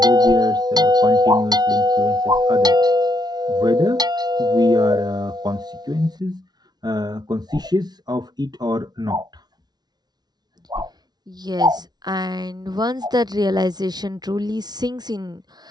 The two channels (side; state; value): left; late; 0.19 ms